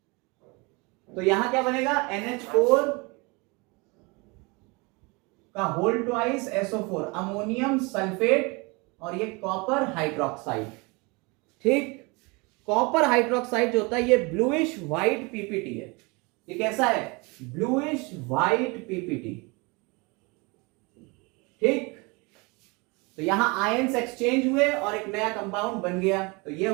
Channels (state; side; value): quieter; left; 27.8 dB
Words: तो यहां क्या बनेगा, NH4 का whole twice SO4, ammonium sulphate, और ये कॉपर हाइड्रोक्साइड। ठीक, कॉपर हाइड्रोक्साइड जो होता है ये ब्लूइश व्हाइट पीपीटी है। ये कैसा है, ब्लूइश व्हाइट पीपीटी। ठीक, तो यहां आयंस एक्सचेंज हुए और एक नया कंपाउंड बन गया, तो ये